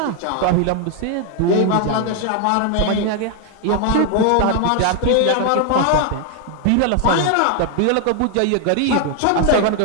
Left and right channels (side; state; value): both; different; correlation 0.00